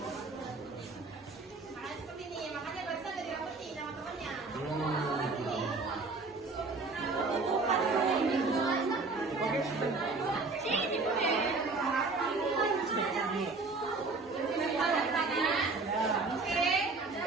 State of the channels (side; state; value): left; quieter; 3.9 dB